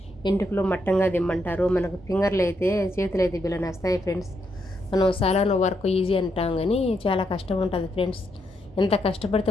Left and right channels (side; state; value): both; normal; correlation 0.79